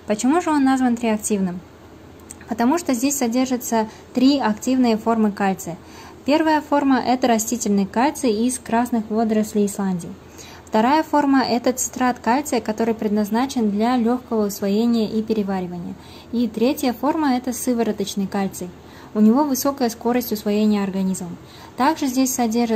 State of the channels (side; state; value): both; identical; correlation 1.00